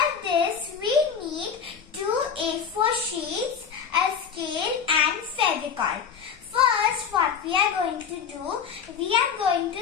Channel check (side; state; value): right; quieter; 7.1 dB